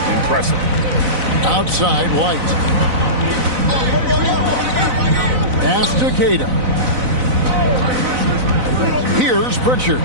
impressive. Outside, White. Pass to Queta. Here's Pritchard.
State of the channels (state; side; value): late; left; 4.0 ms